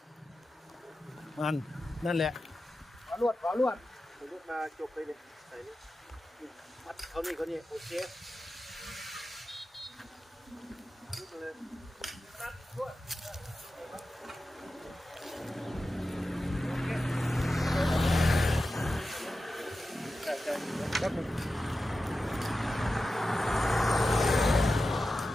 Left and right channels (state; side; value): normal; both; correlation 0.92